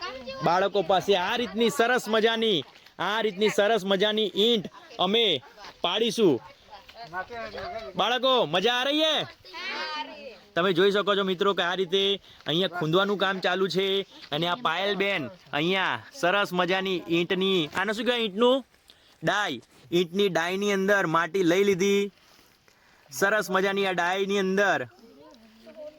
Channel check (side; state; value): both; identical; correlation 1.00